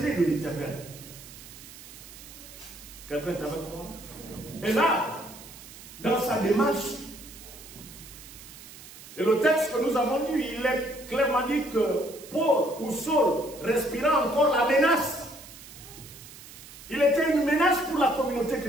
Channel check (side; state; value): right; noise; hiss, 17 dB below the sound